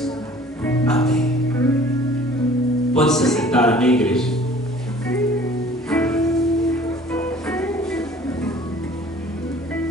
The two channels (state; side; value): normal; both; correlation 0.50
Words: Amém. Pode se sentar, amém, igreja?